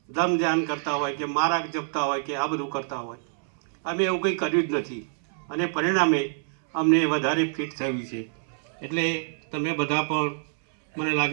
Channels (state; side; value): silent; left; 61 dB below the other